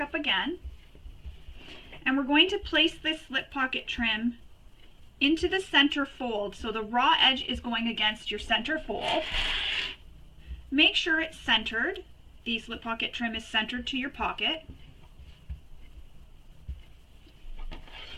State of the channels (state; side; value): identical; both; correlation 1.00